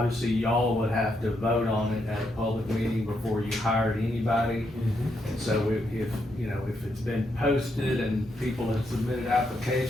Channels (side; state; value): both; normal; correlation 0.79